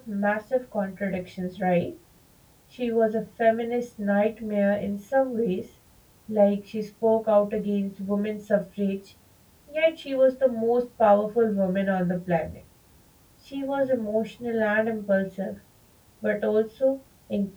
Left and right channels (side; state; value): both; identical; correlation 1.00